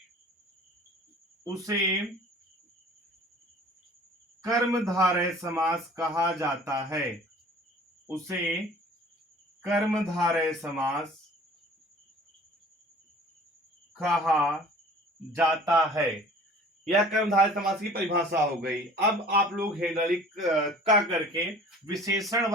समास कहा जाता है। उसे कर्मधारय समास कहा जाता है। यह कर्मधारय समास की परिभाषा हो गई। अब आप लोग हेडलिक का करके विशेषण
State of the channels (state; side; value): normal; both; correlation 0.47